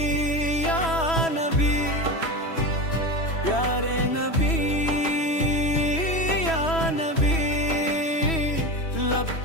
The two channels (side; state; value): right; late; 3.1 ms